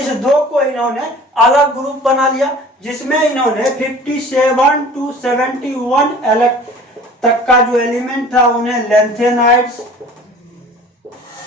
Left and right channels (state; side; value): normal; both; correlation 0.45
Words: 2 को इन्होंने अलग ग्रुप बना लिया, जिसमें इन्होंने 57 टू 71 तक का जो एलिमेंट था उन्हें लेंथेनॉइड्स,